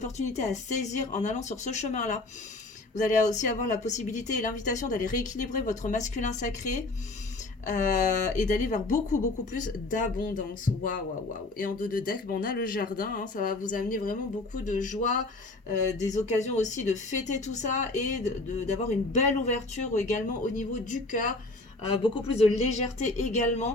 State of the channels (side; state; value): right; quieter; 3.0 dB